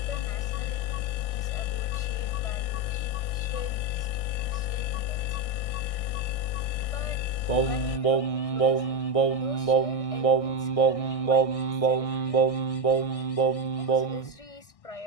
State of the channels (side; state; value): right; late; 1.6 ms